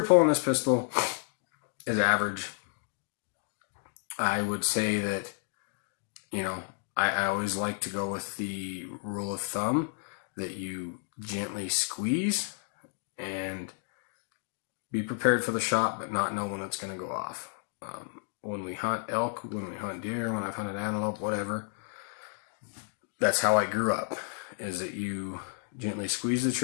pull on this pistol is average. I would say that, you know, I always like to go with the rule of thumb that you gently squeeze and be prepared for the shot, but not know when it's going to go off. When we hunt elk, when we hunt deer, when I've hunted antelope, whatever, that's how I grew up, is that you gently squeeze the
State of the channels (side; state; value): right; silent; 57 dB below the other